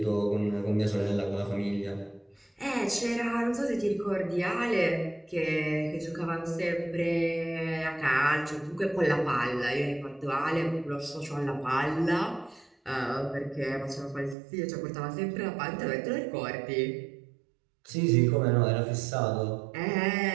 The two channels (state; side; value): drops out; left; at 14.4 s